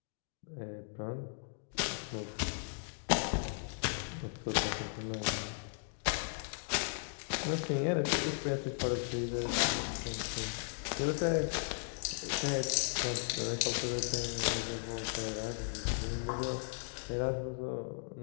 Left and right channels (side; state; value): right; silent; digital silence